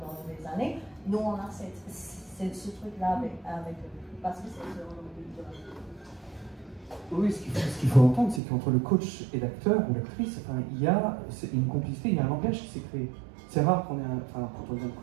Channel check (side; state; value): left; drops out; at 8.4 s